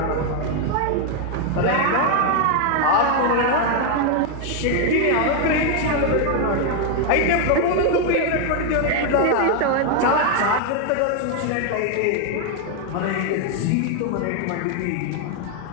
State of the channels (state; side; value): different; both; correlation 0.01